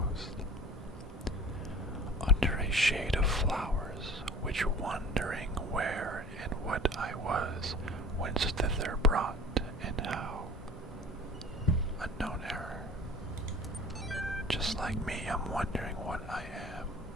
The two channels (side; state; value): both; normal; correlation 0.44